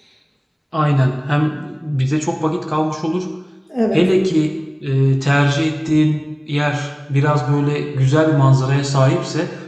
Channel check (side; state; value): both; identical; correlation 1.00